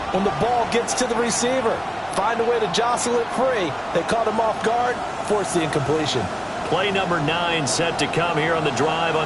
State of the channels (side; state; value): both; identical; correlation 1.00